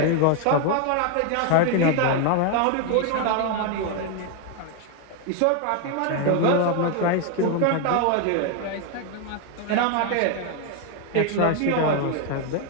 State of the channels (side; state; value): both; different; correlation 0.01